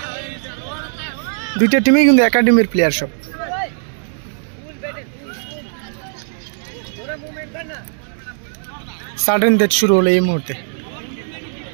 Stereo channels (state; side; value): silent; left; digital silence